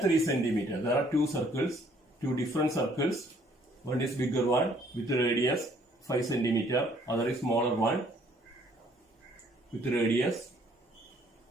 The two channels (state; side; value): normal; both; correlation 0.62